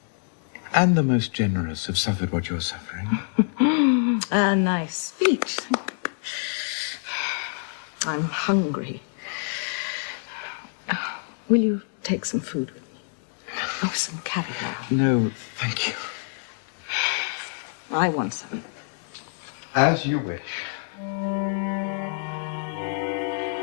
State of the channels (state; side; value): silent; right; 60 dB below the other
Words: and the most generous have suffered what you're suffering. A nice speech. I'm hungry. Will you take some food with me? Oh, some caviar. No, thank you. I want some. As you wish.